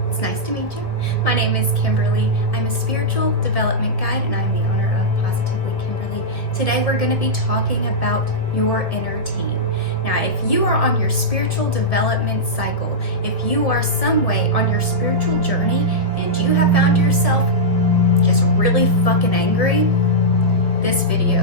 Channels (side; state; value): right; late; 1.7 ms